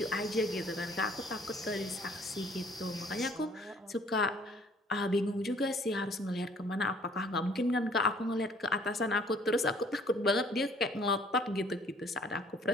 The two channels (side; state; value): both; normal; correlation 0.58